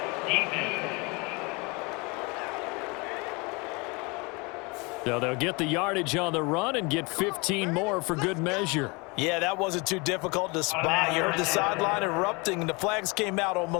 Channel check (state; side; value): quieter; right; 28.2 dB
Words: So they'll get the yardage on the run and get 15 more for good measure. Yeah, that wasn't too difficult to spot. You heard the sideline erupting, and the flags came out